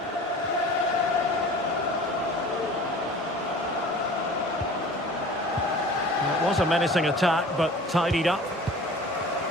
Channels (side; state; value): both; normal; correlation 0.43